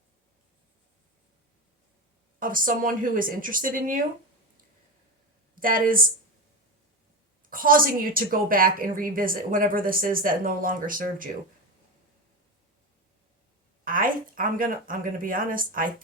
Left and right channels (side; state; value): both; normal; correlation 0.19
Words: of someone who is interested in you that is causing you to go back and revisit whatever this is that no longer served you. I'm gonna be honest. I